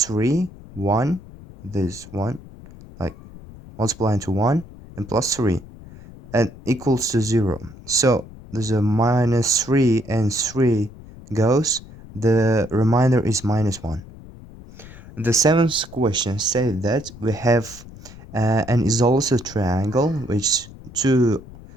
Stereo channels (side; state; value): left; noise; rumble, 18 dB below the sound